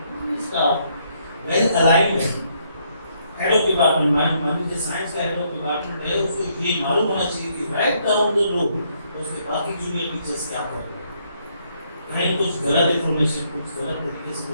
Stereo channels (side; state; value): both; inverted; correlation -0.72